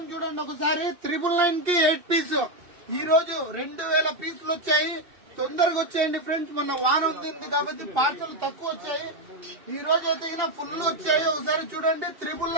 చూడండి ఒకసారి. 999 కి 8 పీస్. ఈ రోజు 2000 పీసులు వచ్చాయి. తొందరగా వచ్చేయండి ఫ్రెండ్స్, మొన్న వాన ఉంది కాబట్టి పార్సల్ తక్కువ వచ్చాయి. ఈ రోజు అయితే ఫుల్ వచ్చాయి. ఒకసారి చూడండి.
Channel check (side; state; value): left; late; 2.7 ms